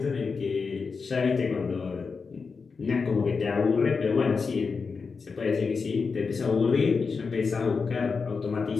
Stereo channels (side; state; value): right; quieter; 5.0 dB